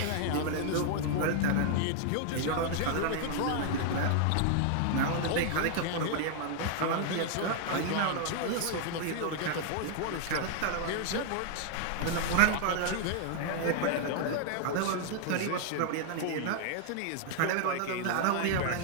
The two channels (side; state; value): both; different; correlation 0.00